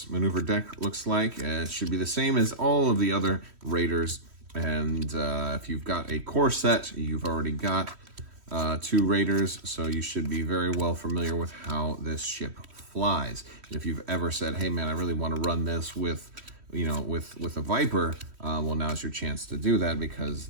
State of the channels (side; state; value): left; late; 3.1 ms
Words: maneuver deck looks like. It should be the same as all of the other Raiders. And if you've got a core set, you've already got 2 Raiders, so you should be very well familiar with how this ship flies. And if you've ever said, hey man, I really want to run this with, you know, with a Viper, well, now's your chance to do that, because